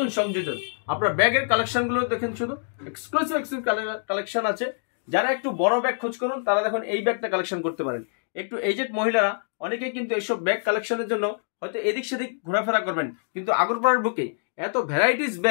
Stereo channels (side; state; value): right; silent; digital silence